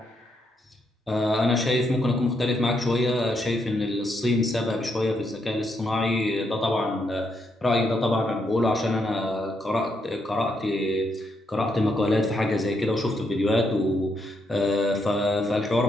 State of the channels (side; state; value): both; normal; correlation 0.78